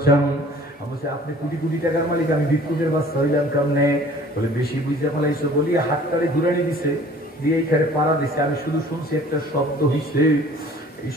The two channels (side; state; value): both; normal; correlation 0.51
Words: আমি বলছি, আপনি কোটি কোটি টাকার মালিক, আমি ভিক্ষুকের বাচ্চা হইলাম কেমনে? বলে বেশি বুঝতে পারলাইছো বলি হাতটারে ঘুরানি দিছে, দিয়ে এইখানে পাড়া দিছে। আমি শুধু শুনছি একটা শব্দ হইছে। এই